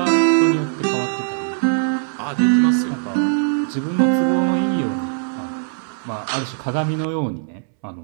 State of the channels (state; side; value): silent; left; 65 dB below the other